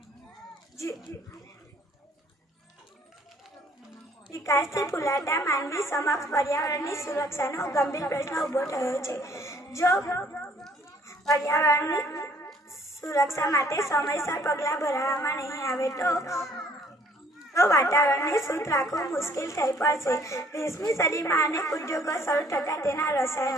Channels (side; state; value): both; normal; correlation 0.60